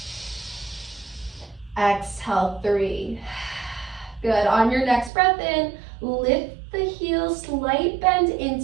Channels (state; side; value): drops out; left; at 5.1 s